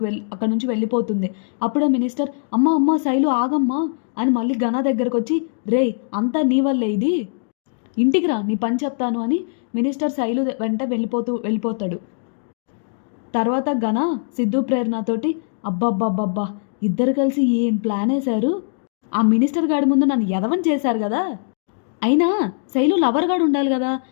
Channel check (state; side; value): silent; right; digital silence